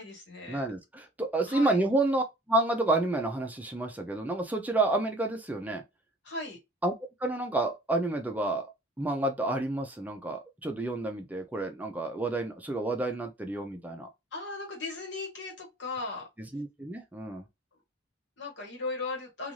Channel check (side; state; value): both; normal; correlation 0.50